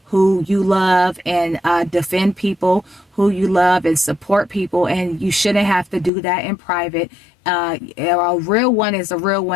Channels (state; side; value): drops out; right; at 6.1 s